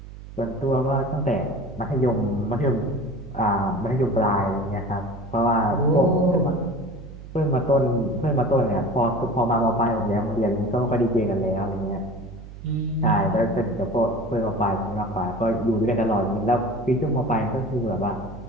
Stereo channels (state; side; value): noise; right; hum, 14 dB below the sound